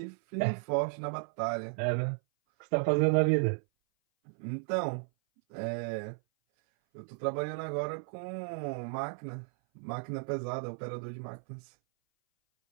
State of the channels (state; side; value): silent; left; 55 dB below the other